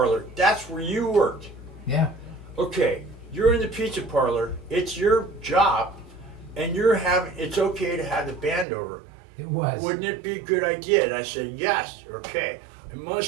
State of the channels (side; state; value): left; drops out; at 8.7 s